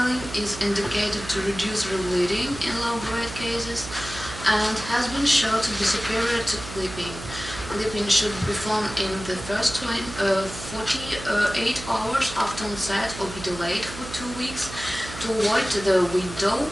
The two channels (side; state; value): right; noise; hum, 12 dB below the sound